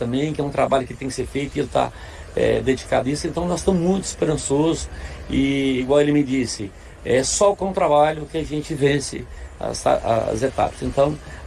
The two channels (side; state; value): both; identical; correlation 1.00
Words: que é um trabalho que tem que ser feito, e ele está dedicado a isso. Então nós estamos muito esperançosos, e igual ele me disse, é só com o trabalho que a gente vence as etapas. Então